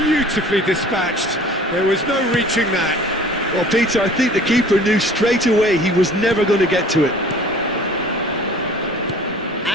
dispatched. There was no reaching that. Well, Peter, I think the keeper knew straight away he was never going to get to it.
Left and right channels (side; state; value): both; normal; correlation 0.48